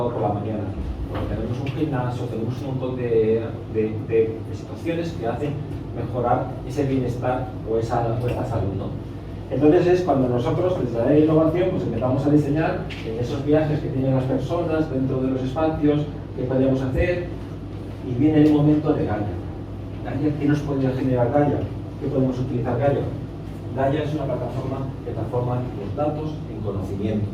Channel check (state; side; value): identical; both; correlation 1.00